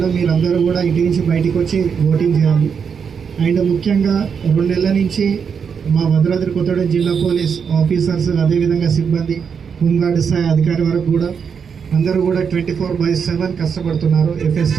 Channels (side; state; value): left; quieter; 6.6 dB